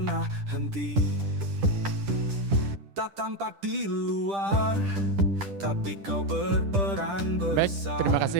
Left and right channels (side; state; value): left; late; 10 ms